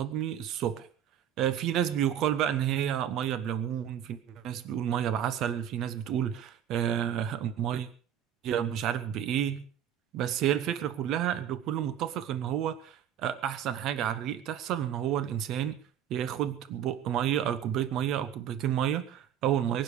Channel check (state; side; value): quieter; left; 9.9 dB